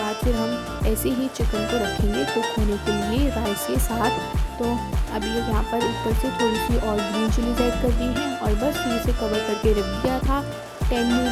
फिर हम ऐसे ही चिकन को रखेंगे कुक होने के लिए राइस के साथ। तो अभी यहाँ पर ऊपर से थोड़ी सी और ग्रीन चिलीज ऐड कर दी हैं, और बस फिर इसे कवर करके रख दिया था 10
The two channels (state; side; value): identical; both; correlation 1.00